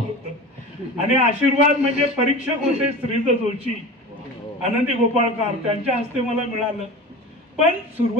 होतं. आणि आशीर्वाद म्हणजे परीक्षक होते श्रीज जोशी, आनंदी गोपाळकर, त्यांच्या हस्ते मला मिळालं. पण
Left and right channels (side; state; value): both; normal; correlation 0.33